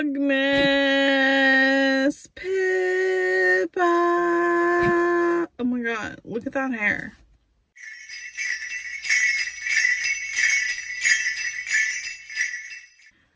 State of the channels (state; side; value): identical; both; correlation 1.00